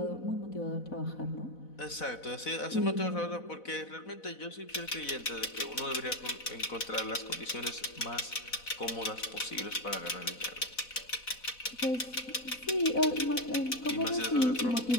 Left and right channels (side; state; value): right; late; 4.0 ms